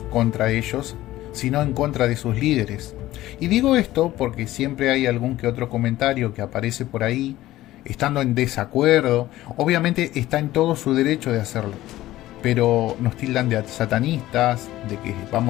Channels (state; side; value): quieter; right; 15.7 dB